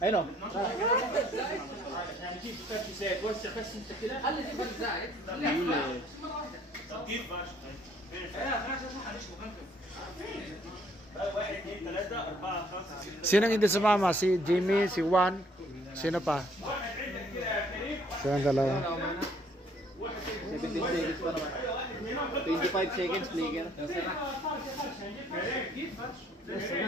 اي نو يعني كيف فرش زيت وسع بس انت كده خلي دي فرش زايد كيف فرش واحد اثنين ثلاثة أربعة خمسة ستة Sinong hindi sumama? Si Jimmy, si Juan, sino pa? Silang dalawa. 17 seconds pa naman. 25 seconds, Flicker.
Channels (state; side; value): normal; both; correlation 0.62